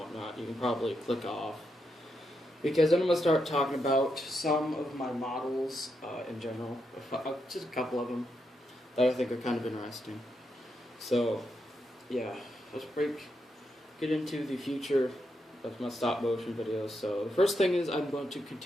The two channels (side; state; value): both; normal; correlation 0.83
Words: you can probably click off, because then I'm going to start talking about some of my models in general, just a couple of them that I think are kind of interesting. So yeah, let's get into the future of my stop motion videos. So the first thing is I'm going to